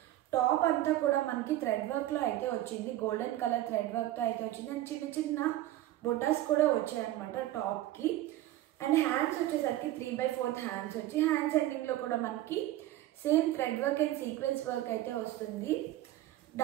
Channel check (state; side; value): quieter; left; 14.7 dB